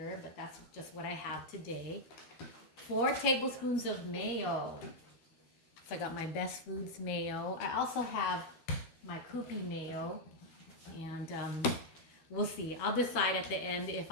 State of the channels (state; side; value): late; right; 12 ms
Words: but that's just what I have today. 4 tablespoons of mayo. So I got my Best Foods mayo. I also have my Koopy mayo, and we'll see. I'll decide at the end if